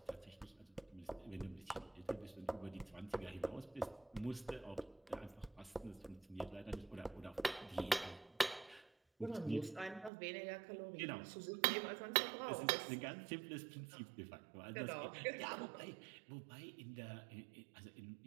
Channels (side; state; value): left; drops out; at 10.1 s